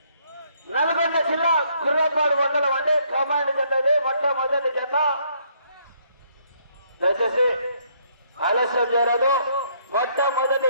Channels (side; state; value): both; inverted; correlation -0.68